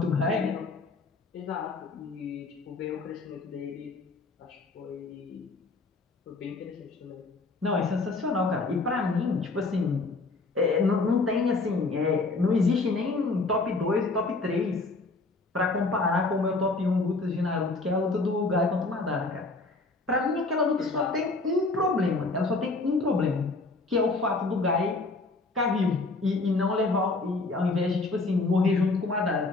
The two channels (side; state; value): right; quieter; 3.5 dB